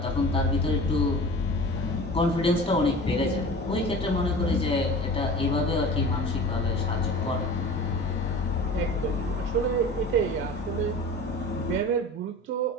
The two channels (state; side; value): normal; both; correlation 0.38